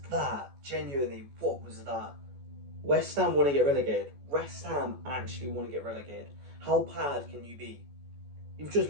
that? Genuinely, what was that? West Ham want to get relegated. West Ham actually want to get relegated. How bad can you be? You've just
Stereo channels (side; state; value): left; late; 14 ms